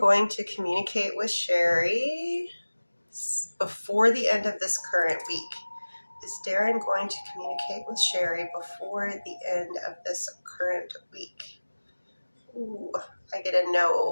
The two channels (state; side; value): inverted; both; correlation -1.00